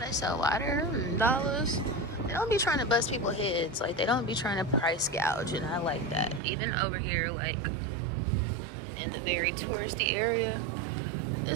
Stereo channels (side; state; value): left; drops out; at 6.4 s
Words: sell water and dollars. They don't be trying to bust people's heads. Like, they don't be trying to price gouge, and I like that. Even over here, like, in the very touristy area,